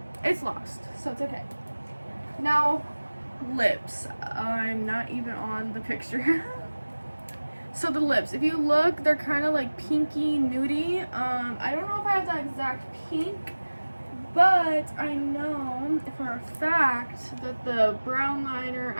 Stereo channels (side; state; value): both; inverted; correlation -1.00